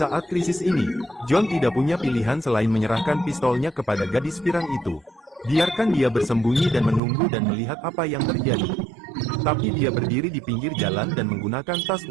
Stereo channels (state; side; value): drops out; left; at 7.0 s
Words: krisis ini, John tidak punya pilihan selain menyerahkan pistolnya kepada gadis pirang itu. Biarkan dia bersembunyi dan menunggu dan melihat apa yang terjadi. Tapi dia berdiri di pinggir jalan dan menggunakan tas